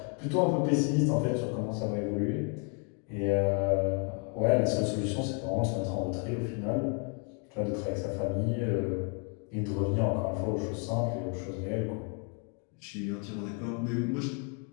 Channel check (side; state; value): right; quieter; 36.0 dB